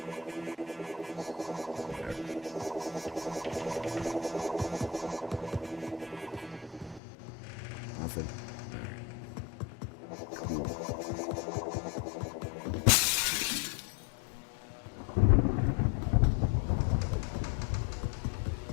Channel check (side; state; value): right; drops out; at 7.0 s